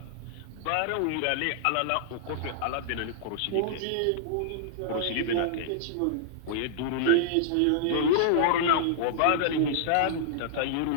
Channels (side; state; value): both; different; correlation -0.01